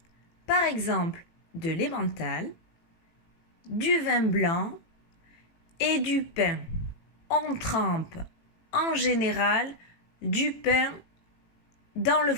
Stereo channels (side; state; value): right; late; 18 ms